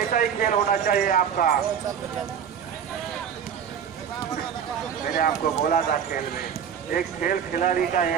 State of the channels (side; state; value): left; quieter; 8.0 dB